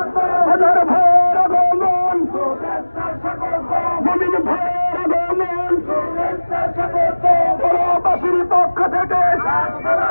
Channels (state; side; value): inverted; both; correlation -1.00